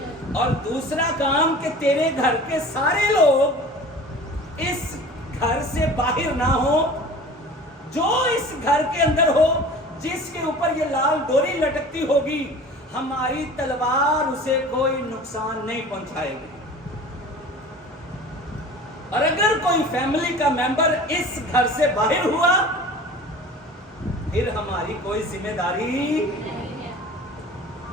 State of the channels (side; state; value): both; normal; correlation 0.41